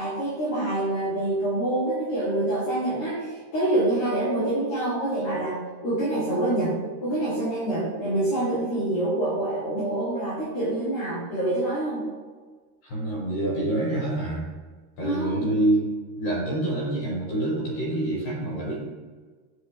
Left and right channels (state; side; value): late; right; 13 ms